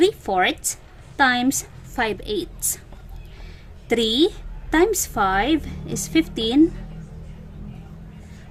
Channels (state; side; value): identical; both; correlation 1.00